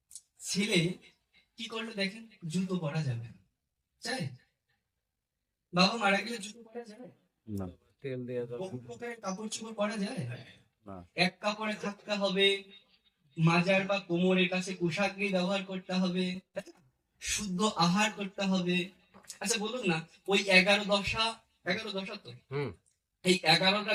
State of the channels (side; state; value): both; identical; correlation 1.00